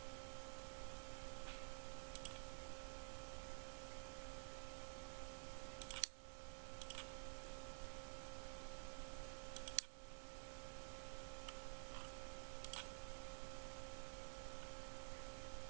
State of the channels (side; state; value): left; silent; digital silence